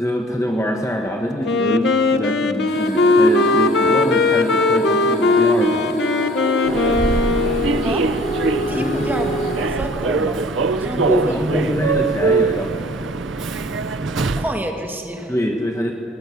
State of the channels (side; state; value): both; normal; correlation 0.50